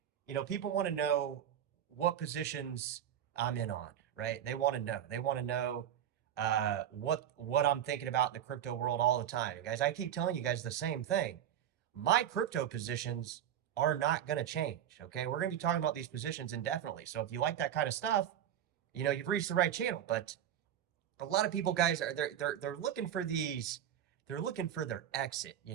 people want to know what positions I'm in on, right? They want to know. They want to know what I'm thinking about in the crypto world all the time. Guys, I keep telling you guys the same thing. My crypto positions are not going to change. Okay, we're going to be talking about these positions indefinitely. So if you like that kind of stuff, you've reached the right channel. But a lot of people, guys, are they're looking for these. They're looking for their exit.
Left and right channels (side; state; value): left; quieter; 10.3 dB